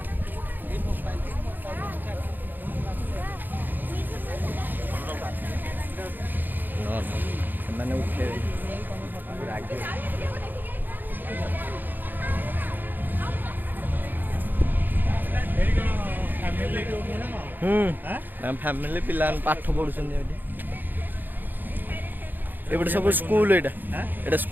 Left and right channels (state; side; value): late; left; 0.089 ms